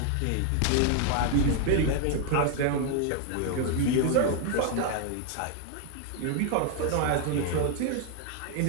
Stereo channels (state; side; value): different; both; correlation 0.00